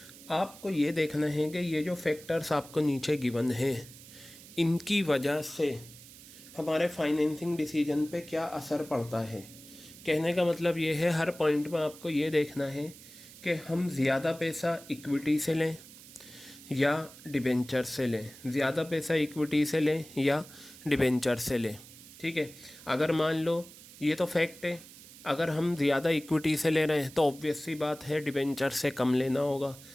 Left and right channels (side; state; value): right; noise; hiss, 19 dB below the sound